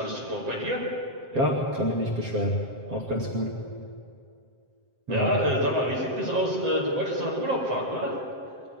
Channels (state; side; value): late; left; 7.6 ms